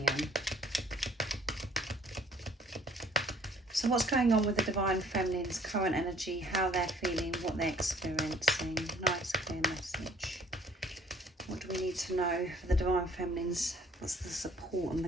So what's going on with the divine feminine's current energy, how they're feeling, what they're experiencing? Nice clear message. What do we need to know for the divine feminines? What's the support and the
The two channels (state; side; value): normal; both; correlation 0.57